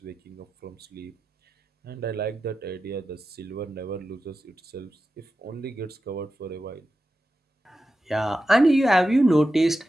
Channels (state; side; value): normal; both; correlation 0.91